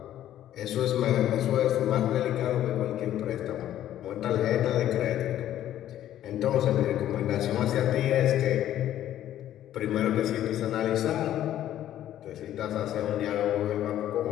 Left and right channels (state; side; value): quieter; right; 12.1 dB